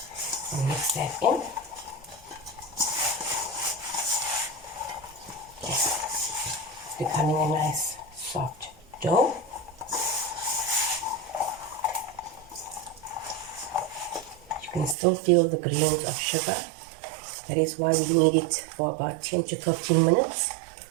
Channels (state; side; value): drops out; left; at 15.0 s